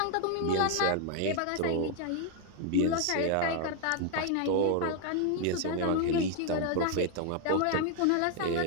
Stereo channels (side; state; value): both; different; correlation 0.00